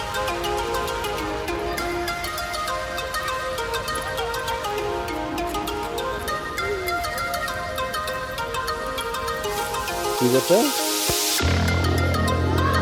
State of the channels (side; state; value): both; identical; correlation 1.00